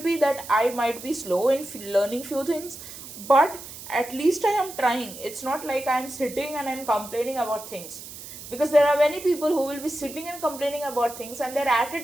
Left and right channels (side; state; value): right; noise; hiss, 13 dB below the sound